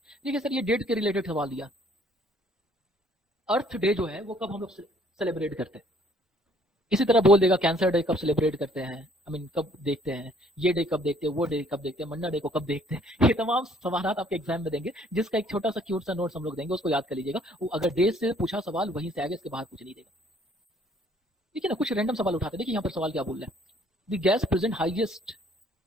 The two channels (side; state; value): both; normal; correlation 0.61